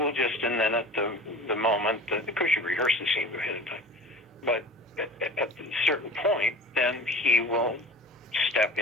just, and then at the moment, of course you rehearse the scene ahead of time, but at a certain point, then he will step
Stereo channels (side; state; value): both; normal; correlation 0.39